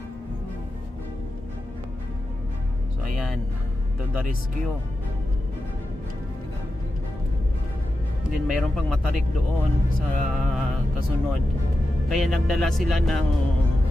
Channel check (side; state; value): both; normal; correlation 0.91